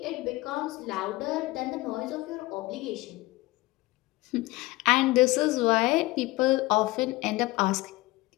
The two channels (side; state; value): right; quieter; 20.3 dB